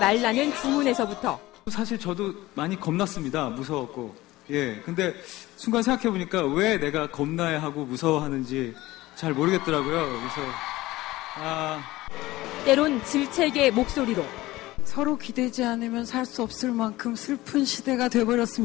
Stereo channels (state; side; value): quieter; right; 18.1 dB